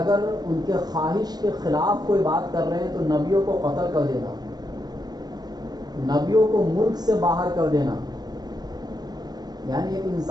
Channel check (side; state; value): left; late; 0.19 ms